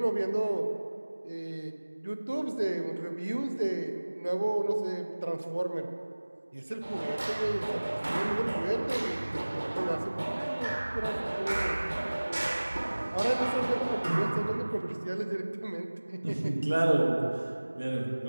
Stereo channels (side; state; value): both; inverted; correlation -1.00